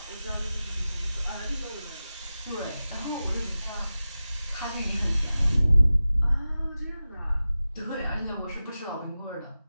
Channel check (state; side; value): inverted; both; correlation -0.95